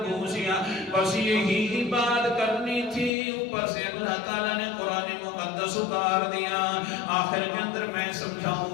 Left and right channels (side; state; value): right; drops out; at 3.1 s